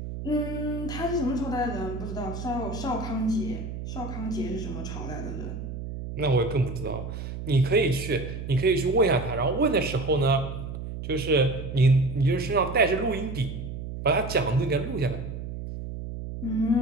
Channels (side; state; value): right; noise; hum, 7 dB below the sound